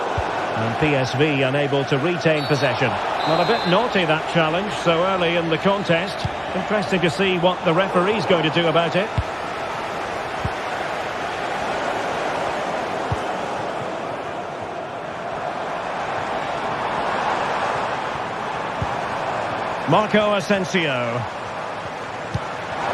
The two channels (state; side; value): identical; both; correlation 1.00